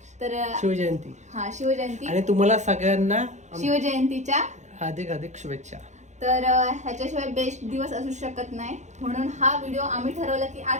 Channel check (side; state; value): left; late; 0.34 ms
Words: तर शिवजयंती. हा, शिवजयंती. आणि तुम्हाला सगळ्यांना शिवजयंतीच्या हार्दिक हार्दिक शुभेच्छा. तर ह्याच्याशिवाय बेस्ट दिवस असू शकत नाही, म्हणून हा व्हिडिओ आम्ही ठरवलं की